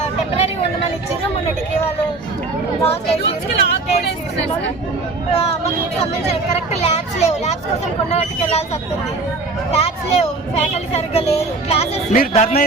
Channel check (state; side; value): quieter; left; 3.5 dB